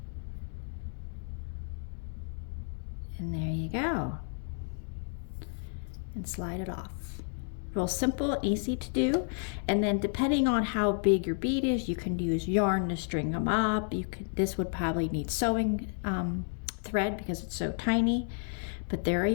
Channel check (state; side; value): silent; right; 57 dB below the other